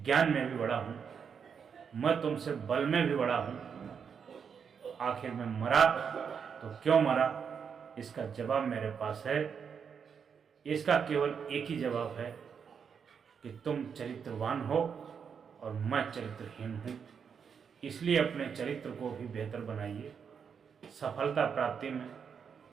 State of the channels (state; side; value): quieter; left; 6.7 dB